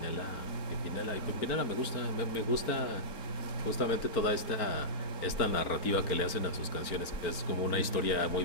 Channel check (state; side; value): late; right; 4.4 ms